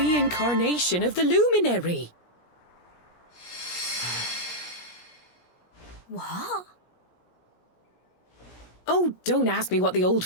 of the Luminary. What? Oh, don't ask me what the old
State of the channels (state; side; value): late; right; 17 ms